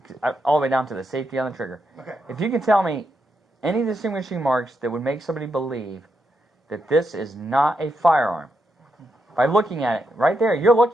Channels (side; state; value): both; normal; correlation 0.83